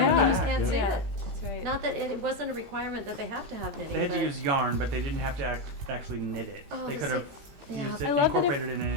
back. You back, just can't see yeah. it. That's right. Not that it wasn't a requirement that they have to have knitting. They had to but- use yarn, but they didn't have to actually knit it. Oh, They this could have is- yeah. used I it, love that if- incorporated it in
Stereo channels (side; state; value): left; late; 18 ms